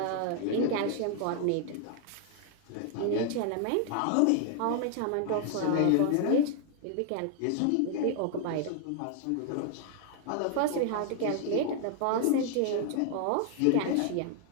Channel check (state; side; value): different; both; correlation 0.00